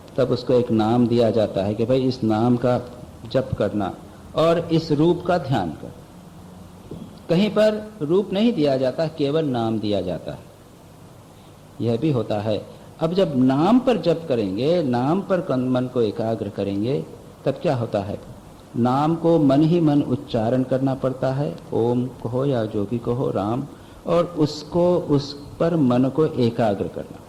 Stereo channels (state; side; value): identical; both; correlation 1.00